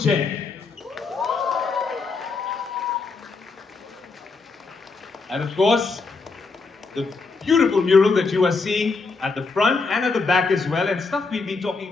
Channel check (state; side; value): quieter; right; 4.2 dB